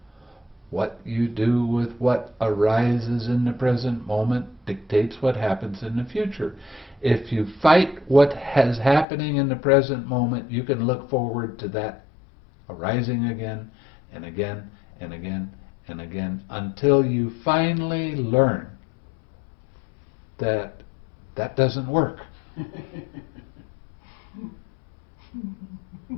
What you do with what arises in the present moment dictates what happens in the future. If you fight what is happening in the present moment, you can look forward to that arising again and again and again and again until you finally learn that that doesn't work.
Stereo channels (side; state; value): right; drops out; at 9.1 s